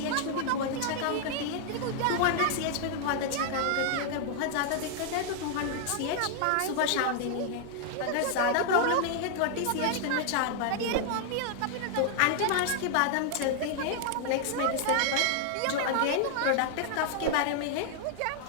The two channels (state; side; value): different; both; correlation 0.00